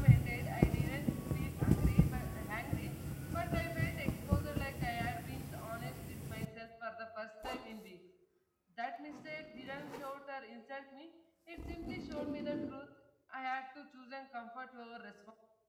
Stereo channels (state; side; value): identical; both; correlation 1.00